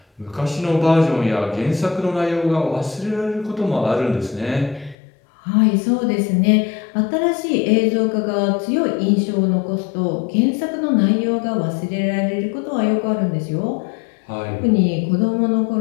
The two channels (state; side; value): drops out; right; at 5.0 s